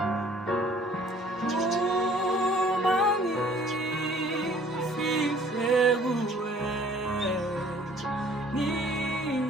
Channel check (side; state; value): both; normal; correlation 0.55